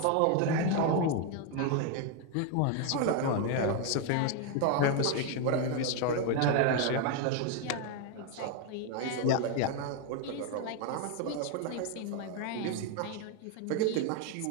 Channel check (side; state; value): both; different; correlation 0.01